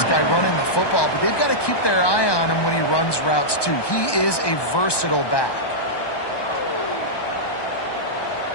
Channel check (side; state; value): right; late; 1.2 ms